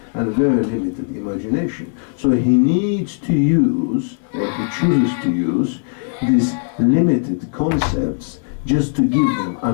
and very limited imagination. So he needs to use, or he chooses to use, these limited concepts just to give them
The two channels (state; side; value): silent; right; 58 dB below the other